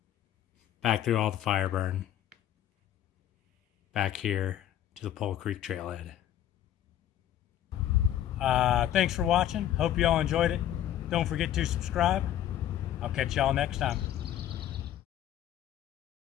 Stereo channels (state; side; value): quieter; right; 11.6 dB